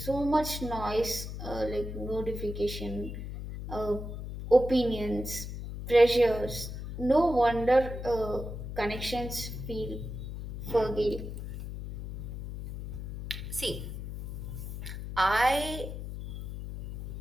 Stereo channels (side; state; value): left; noise; hum, 7 dB below the sound